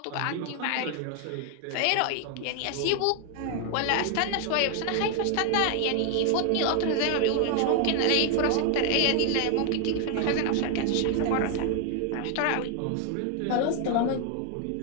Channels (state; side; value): different; both; correlation 0.01